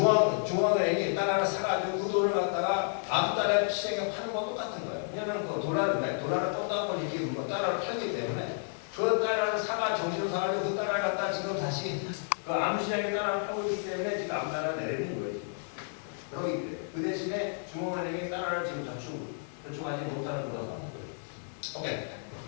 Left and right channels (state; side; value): silent; right; 57 dB below the other